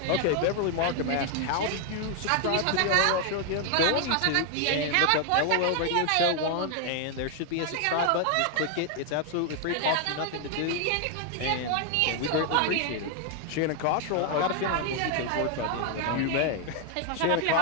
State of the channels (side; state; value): both; different; correlation 0.00